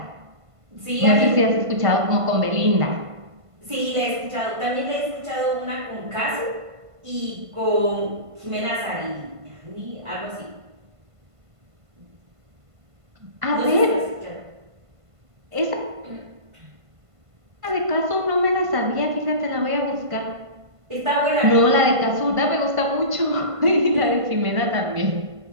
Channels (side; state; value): left; late; 1.5 ms